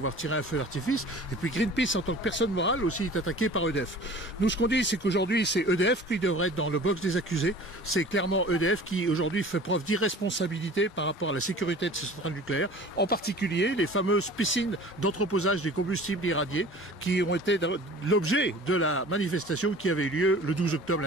tiré un feu d'artifice. Et puis Greenpeace, en tant que personne morale, aussi est attaqué par EDF. Nous, ce qu'on dit, c'est qu'aujourd'hui, c'est EDF qui devrait être dans le box des accusés. C'est clairement EDF qui, aujourd'hui, fait preuve d'irresponsabilité par rapport à la sécurité de ces centrales nucléaires. En particulier, les fameuses piscines d'entreposage des combustibles irradiés qui ont été l'objet de la manifestation qui avait eu lieu le 12 octobre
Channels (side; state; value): both; normal; correlation 0.43